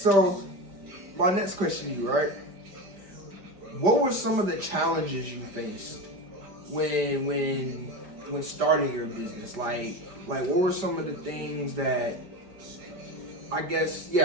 my next question to you, right? What were some of the challenges you faced when starting your business? Like what were some of the things that, I guess,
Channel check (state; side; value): late; left; 5.1 ms